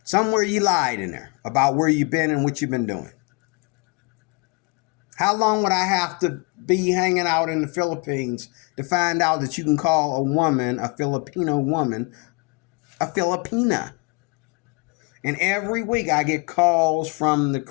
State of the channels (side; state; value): right; quieter; 29.6 dB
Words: Somewhere you lied in there about where you've been and what you've been doing. How long would I have to be hanging out in the Philippines to find out that you can call a woman, a Filipino woman, a Filipina? And every week I get calls from the